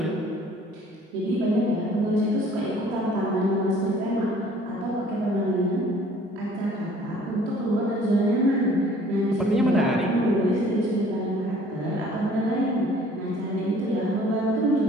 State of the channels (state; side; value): normal; both; correlation 0.54